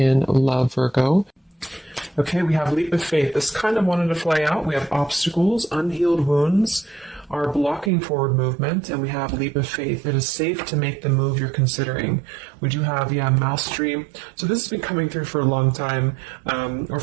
love, Virgo. Okay, we have leap of faith. This kind of wanted to fly out. We have obstacles, unhealed wounds are blocking forward movement, and we have leap of faith. It is safe to make the move you're considering. We do have, mastery. So this has been coming through for a long time, or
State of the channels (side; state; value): left; drops out; at 7.9 s